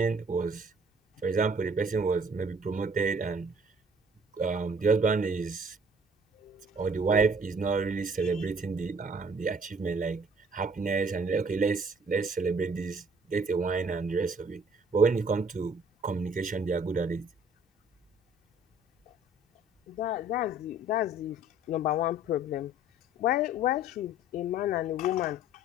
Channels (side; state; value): both; normal; correlation 0.56